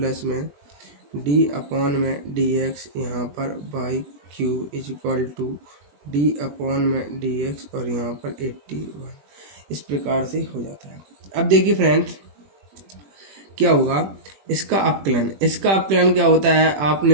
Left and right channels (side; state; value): left; late; 21 ms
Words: में d अपॉन में dx यहाँ पर y cube is equal to d upon में dx और यहाँ पर 81। इस प्रकार से हो जाता है। अब देखिए फ्रेंड्स, क्या होगा इसका अपकलन क्या होता है।